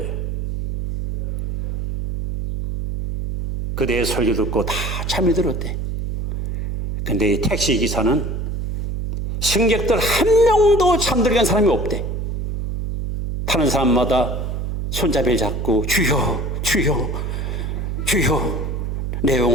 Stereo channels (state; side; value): noise; right; hum, 3 dB below the sound